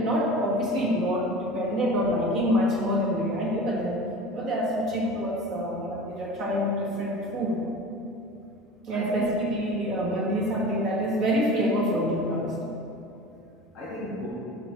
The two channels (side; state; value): both; normal; correlation 0.36